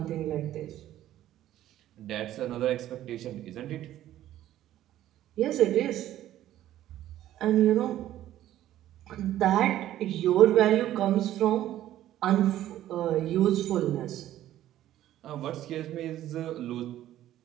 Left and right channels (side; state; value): left; quieter; 13.1 dB